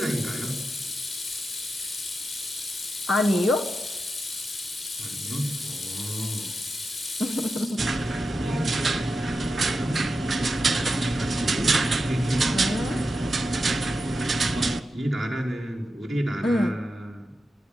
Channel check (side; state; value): both; normal; correlation 0.89